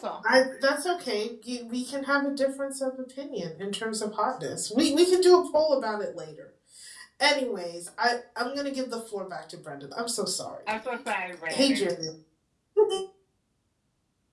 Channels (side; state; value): both; identical; correlation 1.00